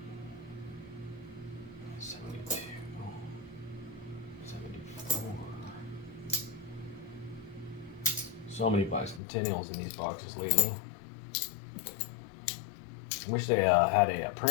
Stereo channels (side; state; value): right; drops out; at 9.2 s